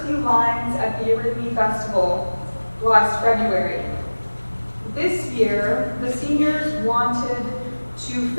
few lines at the Eurythmy Festival last February. This year, the seniors wanted to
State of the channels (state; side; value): inverted; both; correlation -1.00